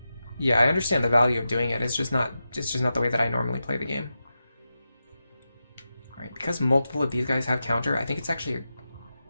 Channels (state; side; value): inverted; both; correlation -0.90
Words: Yeah, I understand the value of doing it. It's just not the way that I normally play the game. Alright, because multiple of these guys have counter, I think it's actually